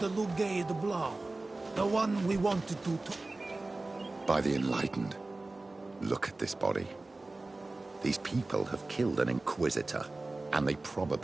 Lugay de Blau. The one we wanted to... By the Enlightened. Look at this body. These people have killed an Inquisitor, and they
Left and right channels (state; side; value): quieter; left; 3.1 dB